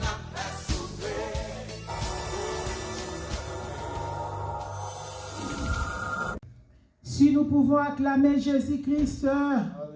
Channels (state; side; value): identical; both; correlation 1.00